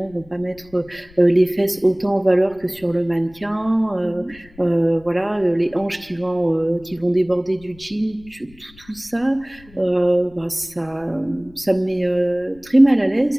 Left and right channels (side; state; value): left; noise; rumble, 25 dB below the sound